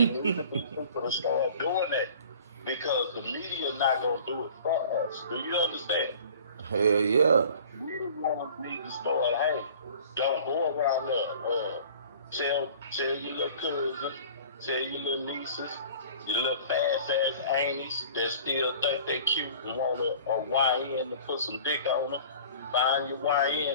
needs to be people to start doing that because the media not gonna do it for us. Do you understand? Hell yeah. We the ones need to start. Hey, don't go around there. Tell your little cousins, tell your little nieces, your little fast ass aunties that still think they cute and want a YN to put some dick on them. Find your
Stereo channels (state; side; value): inverted; both; correlation -0.46